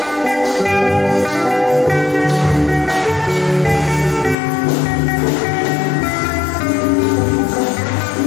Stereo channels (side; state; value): right; drops out; at 4.4 s